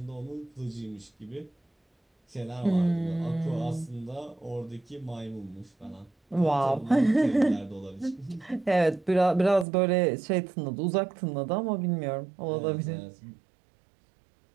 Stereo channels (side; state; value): left; drops out; at 9.7 s